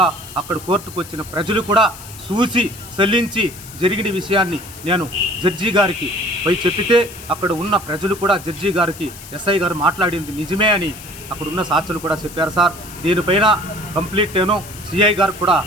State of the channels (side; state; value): left; noise; hiss, 16 dB below the sound